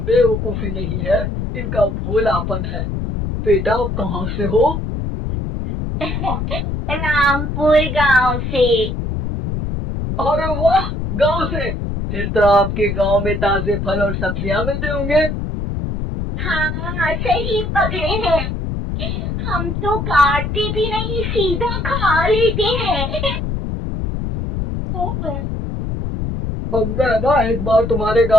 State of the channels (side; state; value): left; noise; rumble, 3 dB below the sound